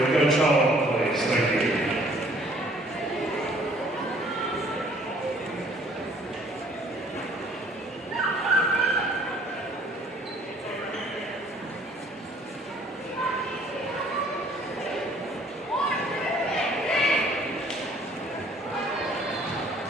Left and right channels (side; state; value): both; normal; correlation 0.58